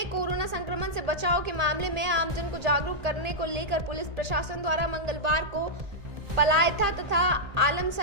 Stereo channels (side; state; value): left; late; 1.8 ms